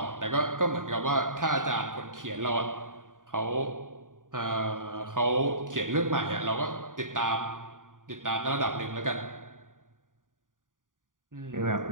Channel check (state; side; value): late; left; 0.89 ms